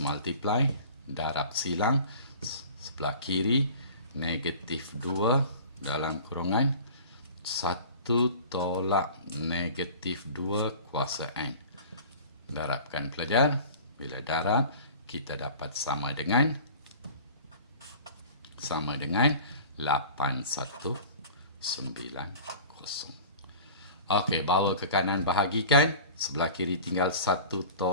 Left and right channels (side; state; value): both; inverted; correlation -0.41